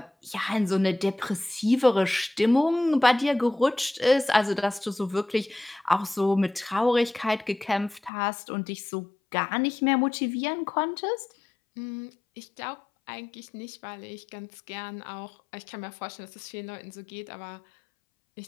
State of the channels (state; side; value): drops out; right; at 8.1 s